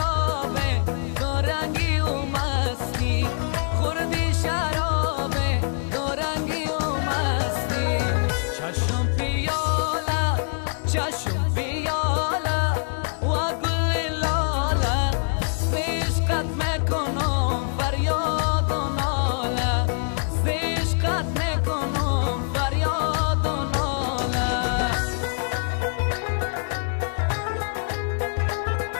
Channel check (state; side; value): silent; right; digital silence